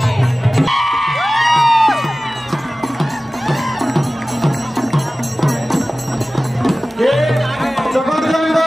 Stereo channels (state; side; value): normal; both; correlation 0.97